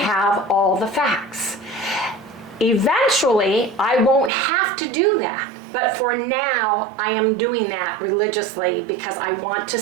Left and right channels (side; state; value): left; drops out; at 4.3 s